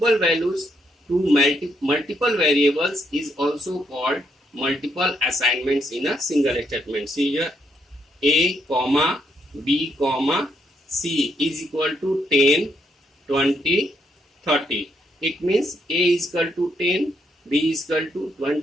values to multiple variables is also called multiple assignments in a single statement. See here A, comma, B, comma, C is equal to 10, 20, 30. It means A is equal to 10, B is equal to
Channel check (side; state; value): both; normal; correlation 0.76